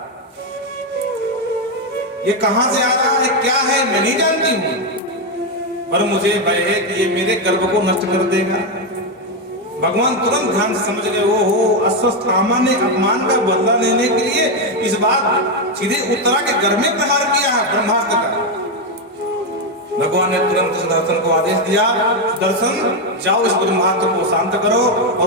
ये कहां से आ रहा है, क्या है, मैं नहीं जानती हूं, पर मुझे भय है कि ये मेरे गर्भ को नष्ट कर देगा। भगवान तुरंत ध्यान से समझ गए, ओहो, अश्वत्थामा ने अपमान का बदला लेने के लिए इस बार सीधे उत्तरा के गर्भ में प्रहार किया है ब्रह्मास्त्र का। भगवान ने तुरंत सुदर्शन को आदेश दिया, सुदर्शन जाओ इस ब्रह्मास्त्र को शांत करो।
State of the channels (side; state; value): both; normal; correlation 0.06